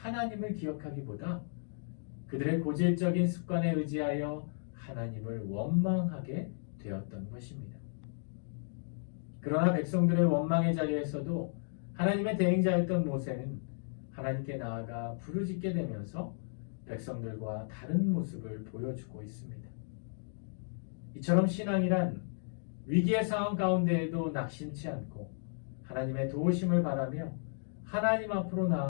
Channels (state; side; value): silent; right; digital silence